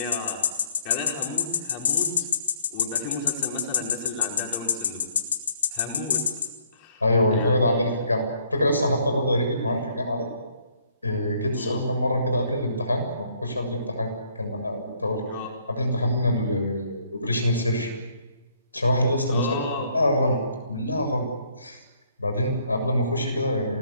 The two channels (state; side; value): inverted; both; correlation -0.64